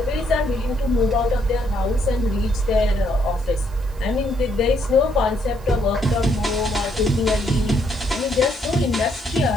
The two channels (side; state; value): right; noise; hiss, 26 dB below the sound